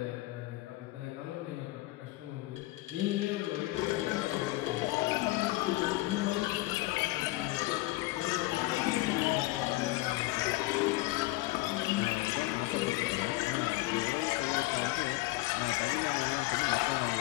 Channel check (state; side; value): quieter; right; 19.3 dB